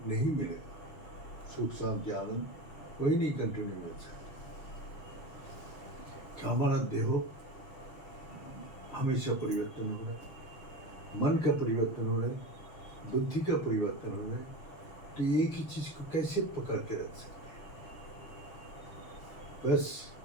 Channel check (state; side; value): late; right; 6.6 ms